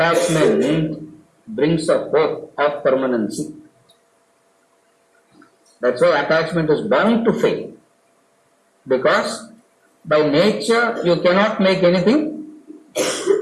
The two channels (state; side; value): identical; both; correlation 1.00